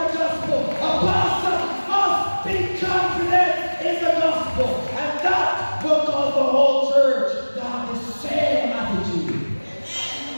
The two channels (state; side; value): inverted; both; correlation -1.00